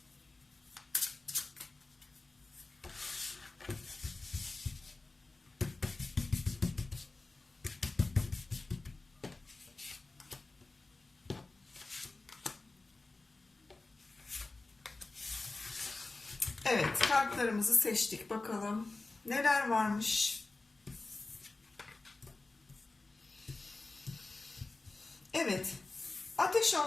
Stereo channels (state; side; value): quieter; right; 3.4 dB